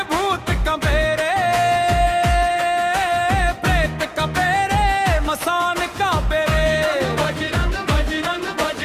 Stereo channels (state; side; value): identical; both; correlation 1.00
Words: भूत कंपे रे, प्रेत कंपे रे, मसान कांपे रे।